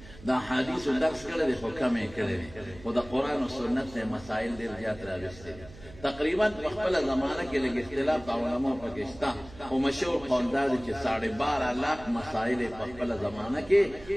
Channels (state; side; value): noise; right; hum, 18 dB below the sound